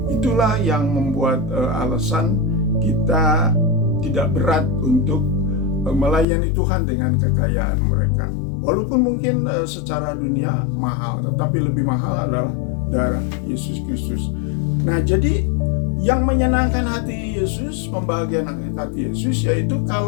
Itulah yang membuat alasan kita tidak berat untuk melayani Tuhan dengan kekayaan mereka. Walaupun mungkin secara dunia mahal, tetapi lebih mahal adalah darah Yesus Kristus. Nah, jadi yang menyenangkan hati Yesus, membahagiakan hati Yesus, yaitu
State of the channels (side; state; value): right; drops out; at 6.2 s